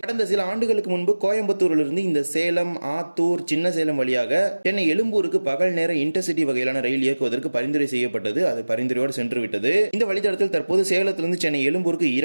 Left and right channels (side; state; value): both; inverted; correlation -1.00